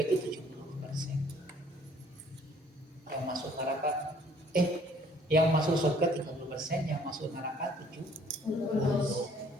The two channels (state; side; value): normal; both; correlation 0.59